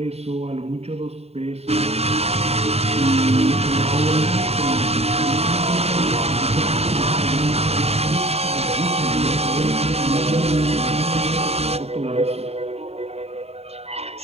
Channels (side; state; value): left; late; 0.30 ms